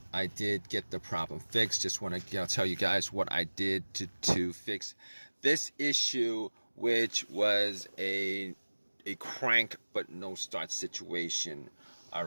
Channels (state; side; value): inverted; both; correlation -1.00